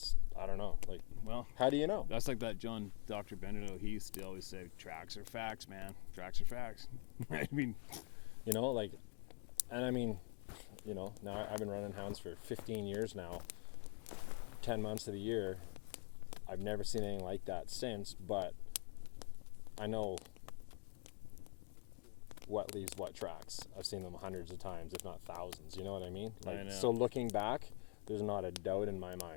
I don't know. Like, Well, how do you know? that's like that John Dr. Benito. He used to always say, tracks are facts, man. Tracks are facts. I mean, You know, like, and I mean, you know, now I've been running hounds for 15 years now, 10 months of the year. I've never seen anything like that since, but I know what leaves what tracks. I've seen them hundreds of times, if not thousands. You know what I mean? I Like, know. so looking back, there's not a doubt in my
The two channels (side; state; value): right; quieter; 38.6 dB